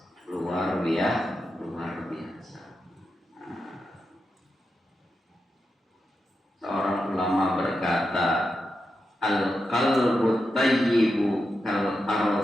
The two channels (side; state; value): both; normal; correlation 0.88